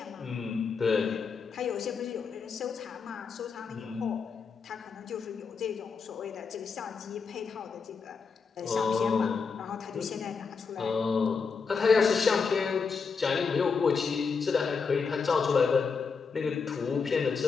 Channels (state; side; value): quieter; right; 5.3 dB